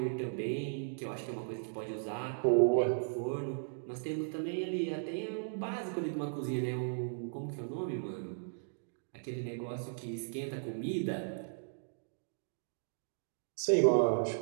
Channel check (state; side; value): silent; left; digital silence